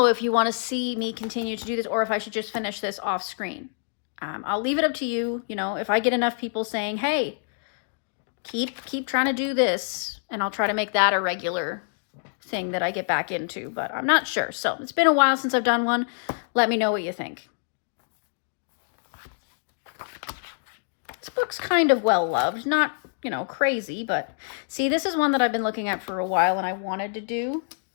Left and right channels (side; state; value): right; silent; digital silence